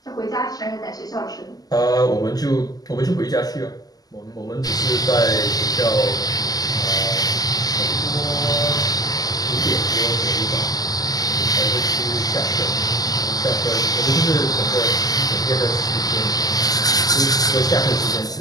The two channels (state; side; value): late; right; 0.18 ms